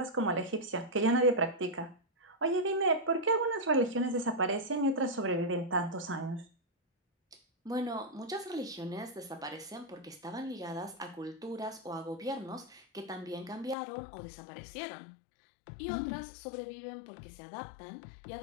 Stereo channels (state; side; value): drops out; right; at 13.8 s